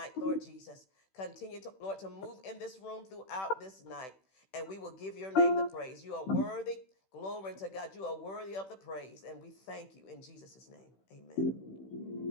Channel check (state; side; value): late; right; 16 ms